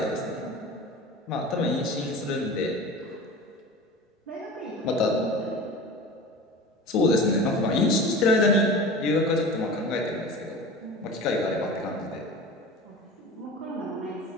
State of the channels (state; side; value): normal; both; correlation 0.35